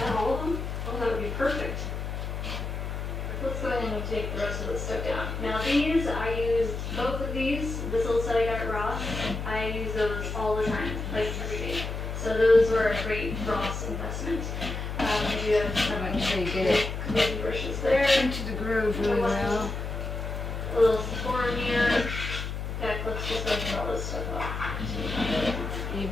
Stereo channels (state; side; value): noise; left; hum, 5 dB below the sound